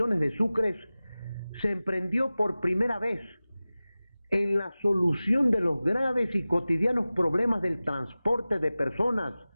de sucres, se emprendió por primera vez en la solución de los graves y cotidianos problemas del transporte de personas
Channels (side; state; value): both; inverted; correlation -0.97